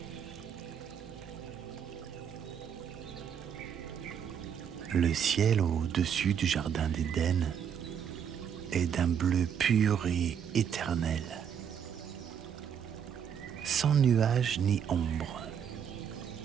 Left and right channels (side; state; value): left; quieter; 8.1 dB